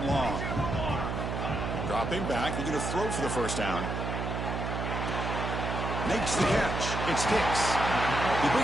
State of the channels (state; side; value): noise; right; hum, 3 dB below the sound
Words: long. Dropping back, they're going to throw for the 1st down. Makes the catch. It's Hicks. You bring